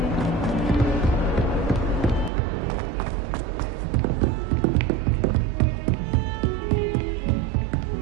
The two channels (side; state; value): left; drops out; at 2.3 s